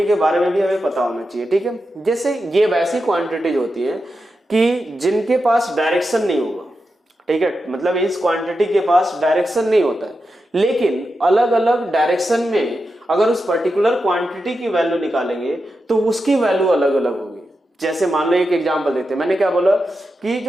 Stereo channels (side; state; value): both; normal; correlation 0.89